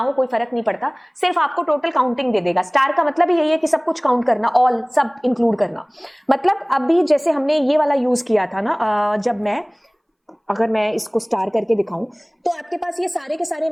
कोई फर्क नहीं पड़ता, सिर्फ आपको टोटल काउंटिंग दे देगा। स्टार का मतलब यही है कि सब कुछ काउंट करना, ऑल, सब इंक्लूड करना। मतलब अभी जैसे हमने ये वाला यूज किया था ना, जब मैं, अगर मैं इसको स्टार करके दिखाऊं, तो आपके पास ये सारे के सारे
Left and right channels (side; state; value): both; identical; correlation 1.00